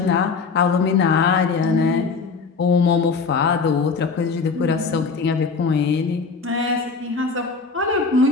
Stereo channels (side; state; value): right; quieter; 4.8 dB